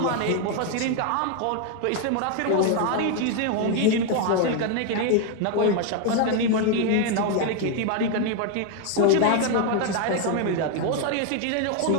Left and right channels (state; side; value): different; both; correlation 0.01